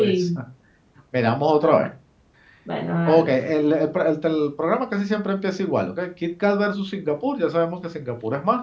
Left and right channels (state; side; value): identical; both; correlation 1.00